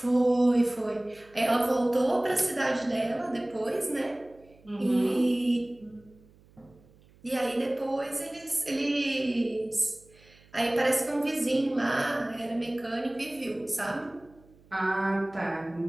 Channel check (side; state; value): right; noise; hum, 28 dB below the sound